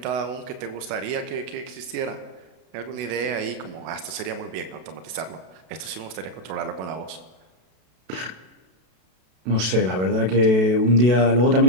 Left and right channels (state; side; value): late; left; 32 ms